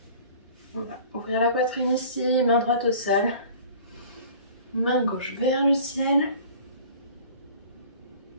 On va ouvrir la poitrine ici, main droite au sol, main gauche vers le ciel.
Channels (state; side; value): inverted; both; correlation -0.45